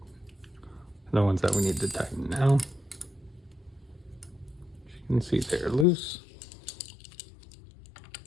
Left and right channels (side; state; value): right; drops out; at 5.9 s